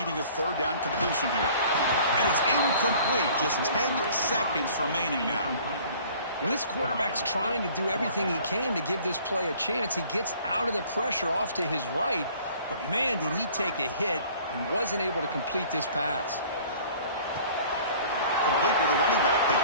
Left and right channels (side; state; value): both; inverted; correlation -0.51